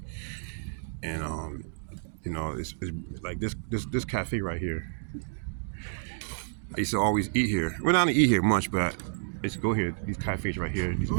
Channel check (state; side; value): silent; left; digital silence